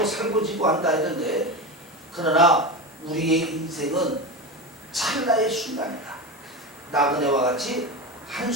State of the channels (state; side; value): normal; both; correlation 0.22